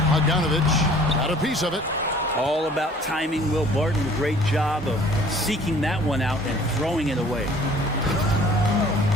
Bogdanovich got a piece of it. All about timing. Will Barton, great job of seeking that one out and throwing it away.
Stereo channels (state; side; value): normal; both; correlation 0.52